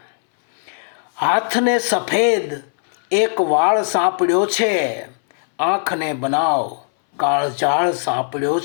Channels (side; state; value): right; silent; 63 dB below the other